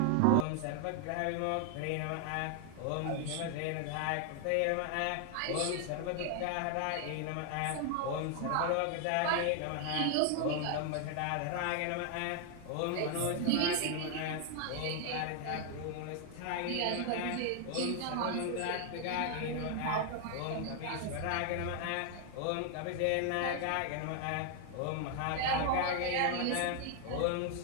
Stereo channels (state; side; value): different; both; correlation 0.00